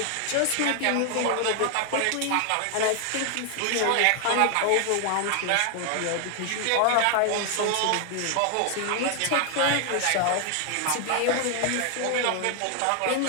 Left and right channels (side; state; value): both; different; correlation 0.00